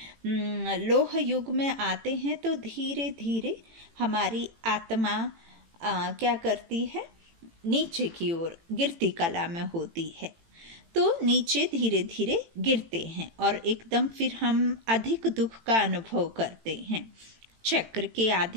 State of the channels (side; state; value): left; late; 18 ms